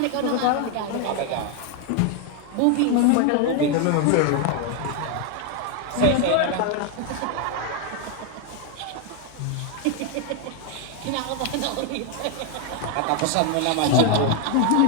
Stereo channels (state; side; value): different; both; correlation 0.01